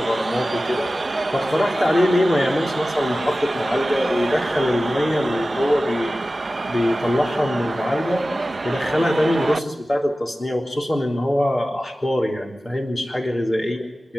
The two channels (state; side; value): normal; both; correlation 0.96